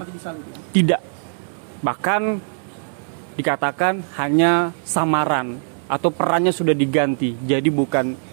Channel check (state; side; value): silent; left; 61 dB below the other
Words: mati di salib ya? Tidak. Bahkan dikatakan hanya samaran atau perannya sudah diganti. Jadi